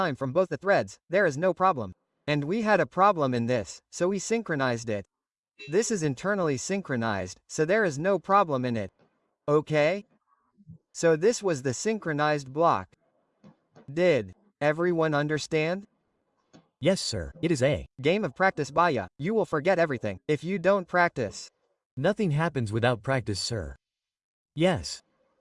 from both the threads, there is no problem. And we had a problem in this, so we synchronized it. This is internally synchronized, so there is no problem in it. Okay? So this was the synchronized block. Did everyone understand? Yes, sir. It is a game of practice baya. You will forget everything if you don't practice. Nothing happens without practice, sir. Yes.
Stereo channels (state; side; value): identical; both; correlation 1.00